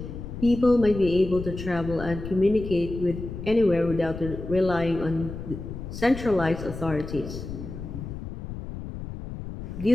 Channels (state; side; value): noise; left; rumble, 9 dB below the sound